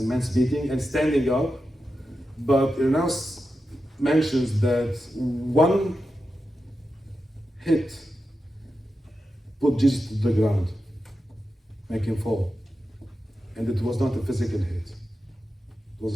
beating and standing up. But Irenaeus mentions that one hit put Jesus to the ground, make him fall. And it was not a physical hit, it was a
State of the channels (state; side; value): normal; both; correlation 0.90